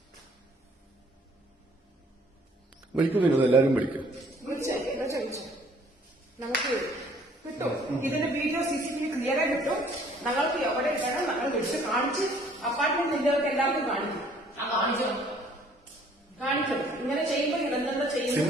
വിളിക്കും വിനോദ്, എല്ലാവരും വിളിക്കും. നമുക്ക് കിട്ടും ഇതിന്റെ വീഡിയോ CCTV ക്ലിയർ ആയി കിട്ടും. ഞങ്ങൾക്ക് എവിടെ ഇടണം ഞങ്ങൾ വിളിച്ച് കാണിച്ച് അപ്പാർട്ട്മെന്റ് നിന്നവർക്ക് എല്ലാവർക്കും കാണിക്കും. കാണിക്കും ഇങ്ങനെ ചെയ്യുമ്പോൾ ഇടന്നെന്താ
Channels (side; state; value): both; normal; correlation 0.58